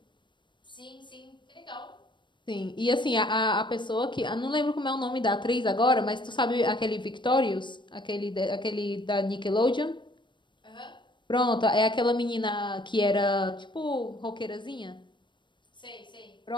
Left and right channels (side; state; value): right; late; 0.23 ms